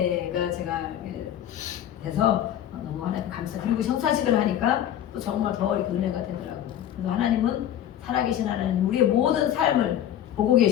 제가 돼서 너무 하나님 감사. 그리고 성사식을 하니까 또 정말 더 이렇게 은혜가 되더라고요. 그래서 하나님은 살아계신 하나님, 우리의 모든 삶을 보고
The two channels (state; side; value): quieter; right; 11.0 dB